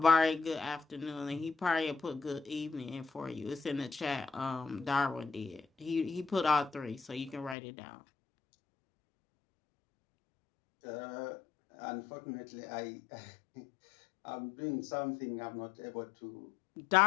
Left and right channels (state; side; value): drops out; right; at 7.6 s